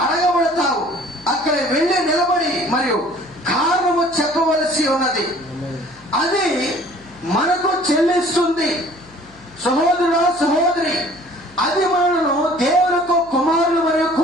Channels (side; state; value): left; noise; hum, 27 dB below the sound